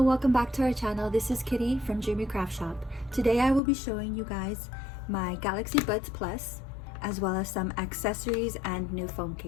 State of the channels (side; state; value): right; drops out; at 3.6 s